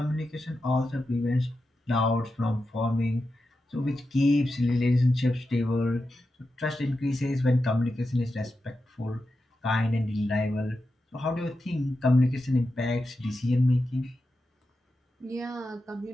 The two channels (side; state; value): both; normal; correlation 0.90